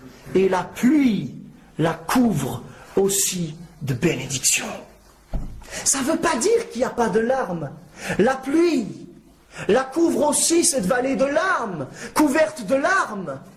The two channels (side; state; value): both; identical; correlation 1.00